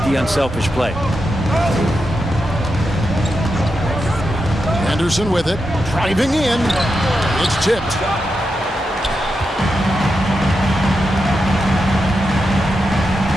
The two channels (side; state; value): both; normal; correlation 0.87